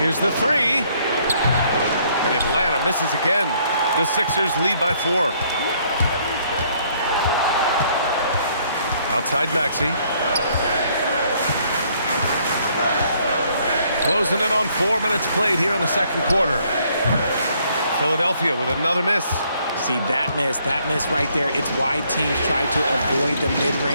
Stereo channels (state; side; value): inverted; both; correlation -0.66